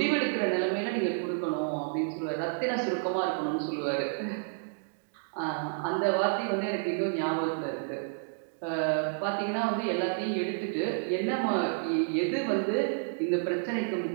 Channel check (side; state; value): left; silent; digital silence